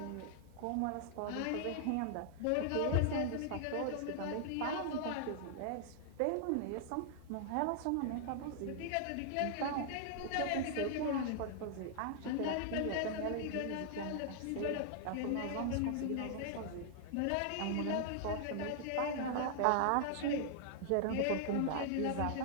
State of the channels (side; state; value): both; different; correlation -0.01